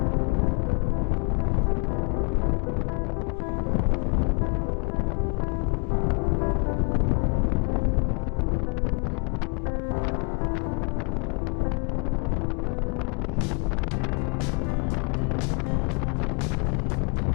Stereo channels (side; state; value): right; quieter; 36.7 dB